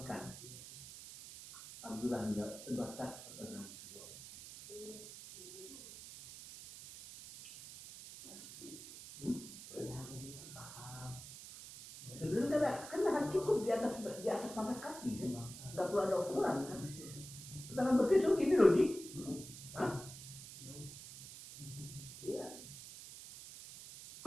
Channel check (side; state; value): right; noise; hiss, 13 dB below the sound